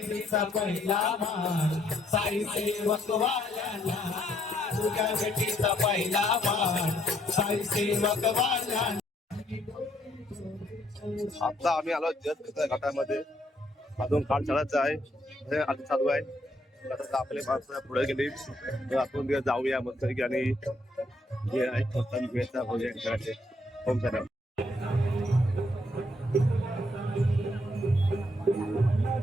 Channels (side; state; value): both; normal; correlation 0.71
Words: पहिला मान साई सेवक वाल्याला पूजा विधीचा पहिला मान साई सेवक वाल्याला. आता आम्ही आलो जस्ट घाटामध्ये अजून काळ चढायचं आहे हे आता चालू आहे. आता आपले माणसं पुढे गेली तर आपण जाऊया मस्त आणि जे आहे भेटचा भोजन करायचे. होम सर